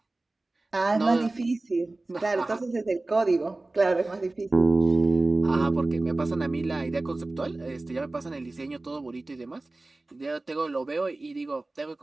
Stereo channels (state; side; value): quieter; left; 3.0 dB